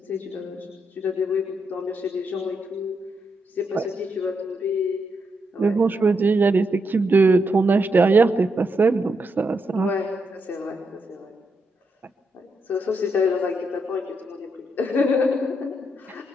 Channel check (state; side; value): normal; both; correlation 0.81